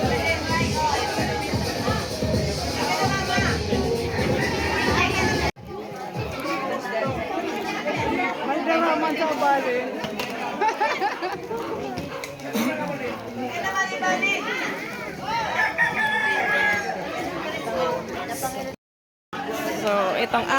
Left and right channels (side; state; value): both; identical; correlation 1.00